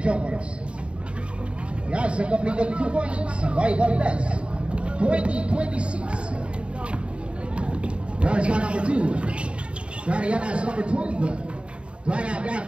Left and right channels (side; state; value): left; late; 0.057 ms